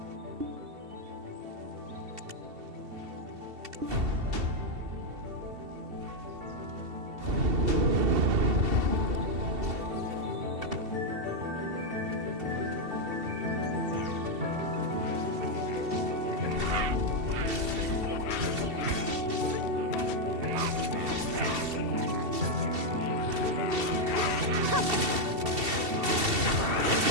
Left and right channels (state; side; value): late; left; 2.7 ms